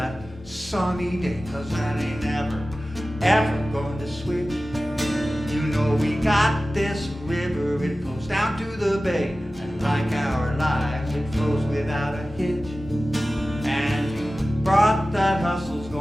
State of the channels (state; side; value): normal; both; correlation 0.96